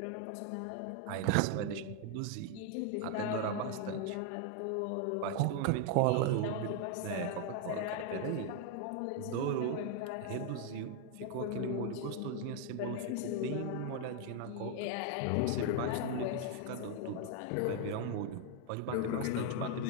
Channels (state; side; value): different; both; correlation 0.00